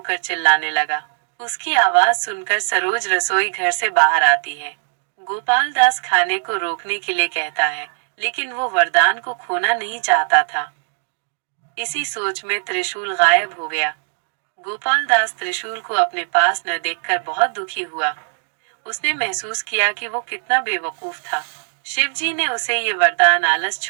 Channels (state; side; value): silent; left; 66 dB below the other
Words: चिल्लाने लगा। उसकी आवाज सुनकर सरोज रसोई घर से बाहर आती है। गोपाल दास खाने को रोकने के लिए कहता है, लेकिन वो वरदान को खोना नहीं चाहता था। इसी सोच में त्रिशूल गायब हो गया। गोपाल दास त्रिशूल को अपने पास न देखकर बहुत दुखी हुआ। उसने महसूस किया कि वो कितना बेवकूफ था। शिवजी ने उसे ये वरदान आलस